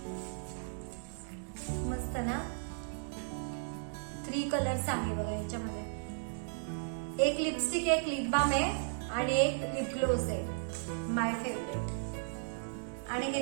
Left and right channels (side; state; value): left; silent; digital silence